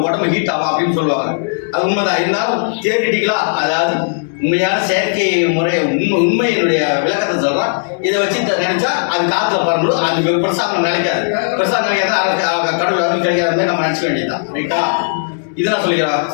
உடம்பு ஹீட் ஆகும் அப்படின்னு சொல்லுவாங்க. அது உண்மைதான். இருந்தாலும் தியரிட்டிக்கலாக, அதாவது உண்மையான செயற்கை முறை உண்மையினுடைய விளக்கத்தை சொல்கிறோம். இதை வச்சு நினைச்சா அது காற்றுல பறந்துடும், அது பிரசாதம் நினைக்காது. பிரசாதம் நினைக்காது, கடவுள் வந்து கிடைக்காத நம்ம நினச்சிக்க வேண்டியதுதான். ரைட்டா? இதெல்லாம் சொல்லிக்கிறான்.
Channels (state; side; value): silent; right; digital silence